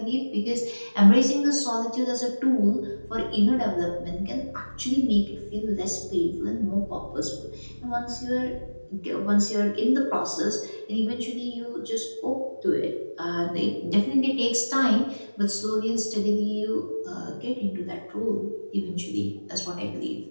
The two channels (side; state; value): both; inverted; correlation -1.00